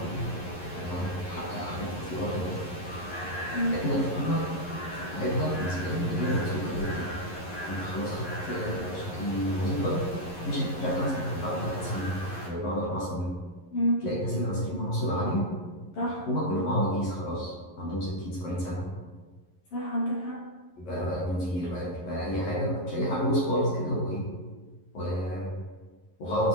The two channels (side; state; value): right; late; 11 ms